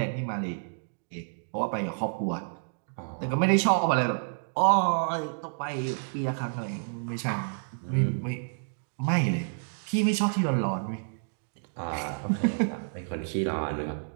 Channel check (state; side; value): silent; left; digital silence